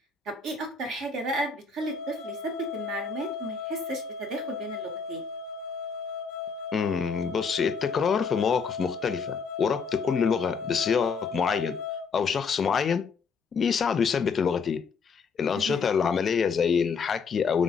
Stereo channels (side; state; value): right; quieter; 5.3 dB